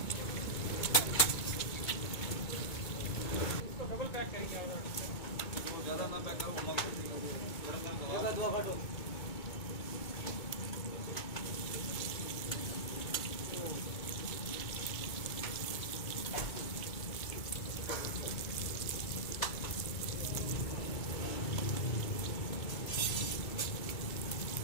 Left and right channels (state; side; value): late; right; 2.2 ms